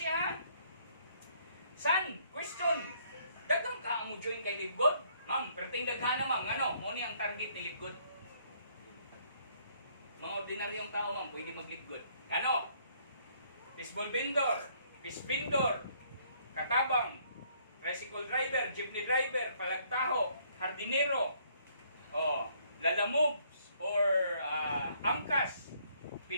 ha? San? Question. Dagang ka mo join kay Libgod? Ma'am, perting daghana, ma'am. Ano? Muna ang target ni Libgod. Mga ordinaryong tao, ma'am, pwede mag-Libgod. Ano? Fishball vendor, fish vendor, katabang, tricycle driver, jeepney driver, palagtaho, hardinero, lalamobs, or angkas,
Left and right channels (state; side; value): inverted; both; correlation -0.65